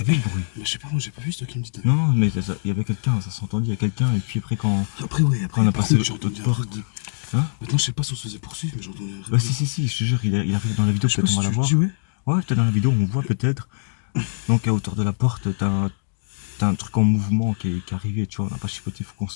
vu le bruit. Mais je sais pas, moi j'ai pas vu, c'est toi qui me dis. Non, mais il y avait quelqu'un, ça s'entendait, il y a quelqu'un, et puis après quand Après, oui, après, on a par passé contre, j'ai entendu l'autre porte. Hein? Maintenant, je sais pas si on se faisait poursuivre, mais j'ai entendu un Ouais, si, je te jure, il arrive dans la vidéo, peut-être on va la voir. Ouais, peut-être dans la vidéo, on voit peut-être. Donc à hauteur de la porte, t'as un truc en mouvement qui est arrivé, tu vois, on n'a pas chipoté, il faut qu'on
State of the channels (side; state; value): right; silent; digital silence